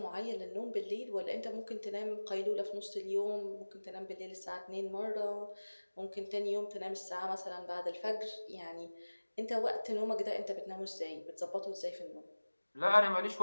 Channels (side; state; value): both; inverted; correlation -1.00